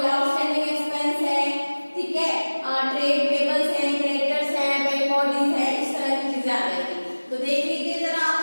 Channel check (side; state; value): both; inverted; correlation -1.00